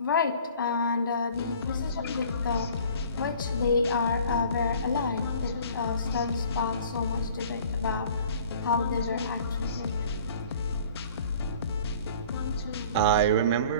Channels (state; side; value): inverted; both; correlation -0.49